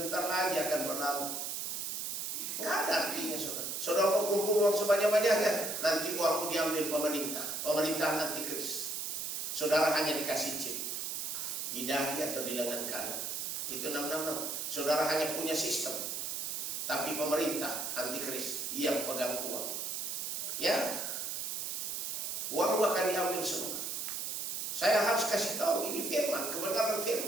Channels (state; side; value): noise; right; hiss, 3 dB below the sound